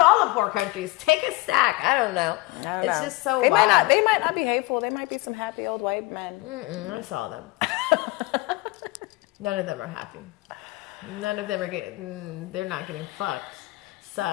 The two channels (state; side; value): quieter; right; 21.2 dB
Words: all the poor countries. Take a stack. I don't know. It's just so wild. They might not be hateful. They might be some happy old white men. I saw them. None of them are happy. None of them are getting... They're not getting fucked.